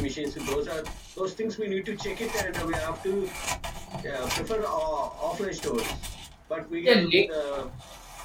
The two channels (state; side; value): identical; both; correlation 1.00